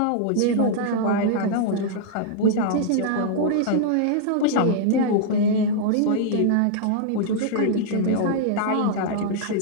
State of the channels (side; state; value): both; different; correlation -0.01